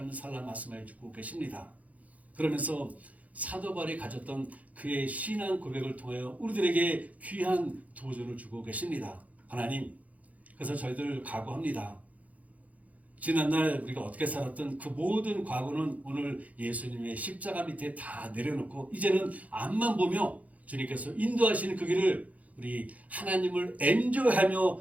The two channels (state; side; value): late; left; 0.071 ms